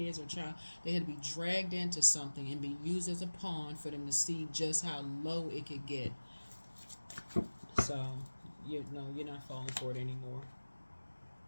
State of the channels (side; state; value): both; inverted; correlation -1.00